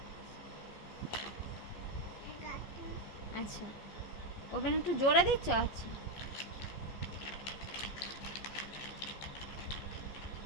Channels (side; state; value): right; late; 14 ms